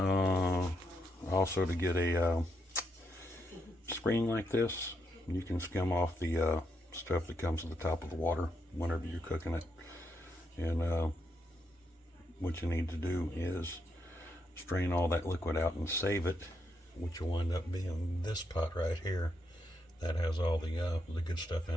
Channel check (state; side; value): normal; both; correlation 0.79